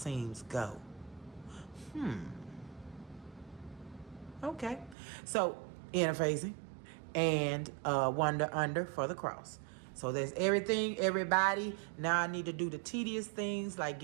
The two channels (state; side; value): drops out; left; at 5.0 s